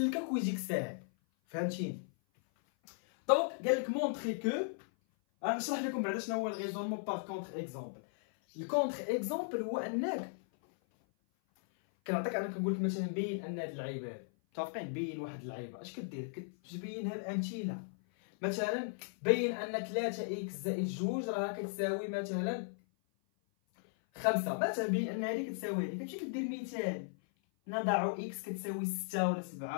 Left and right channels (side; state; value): right; silent; 53 dB below the other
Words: ويجيك ساهل. فهمتيني؟ دونك قال لك مونطري كو، غنشرح لكم بعدا شنو هو الريزونمون باغ كونتر اكزومبل. الكونتر اكزومبل هو انك كنعطيك، انا كنقول لك مثلا بين ان هاد اللعيبه هادي، متفقين؟ بين واحد اللعيبه اش كدير؟ كتبينها بامثله. مثلا بين ان 3 اكس زائد 2 راه كتساوي مثلا 5. مثلا بين ان هذه كتساوي هذه، كتمشي كدير مثال نضع اكس كتساوي 6 ولا